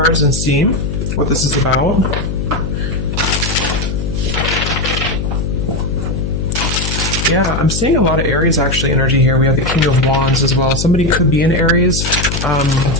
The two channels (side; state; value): left; noise; hum, 3 dB below the sound